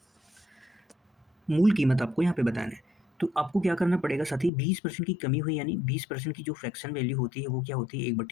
मूल कीमत आपको यहाँ पे बताना है। तो आपको क्या करना पड़ेगा साथी, 20% की कमी हुई यानी 20% की जो फ्रैक्शन वैल्यू होती है वो क्या होती है,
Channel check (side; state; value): right; drops out; at 4.5 s